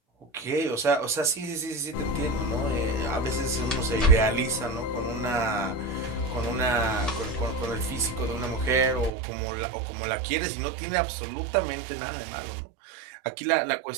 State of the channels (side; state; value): left; drops out; at 9.1 s